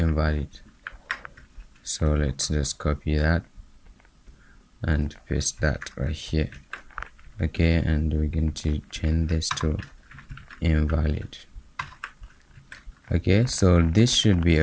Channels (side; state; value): both; identical; correlation 1.00